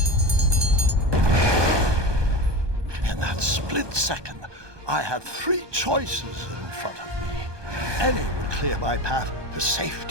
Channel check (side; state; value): left; late; 1.2 ms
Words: Split second, I had three choices in front of me. Any would clear my path to